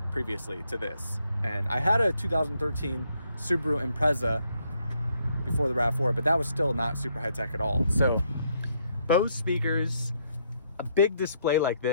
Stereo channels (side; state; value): both; inverted; correlation -0.73